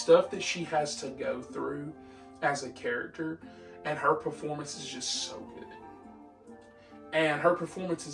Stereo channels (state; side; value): identical; both; correlation 1.00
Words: that she has to go through as a character, and her performance is just so good. And her performance